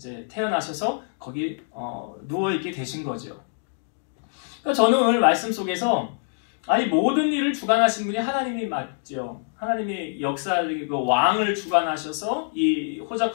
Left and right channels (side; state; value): right; silent; digital silence